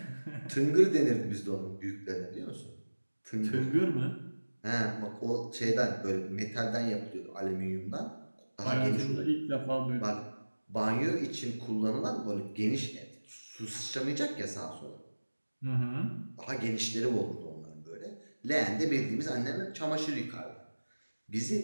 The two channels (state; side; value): inverted; both; correlation -1.00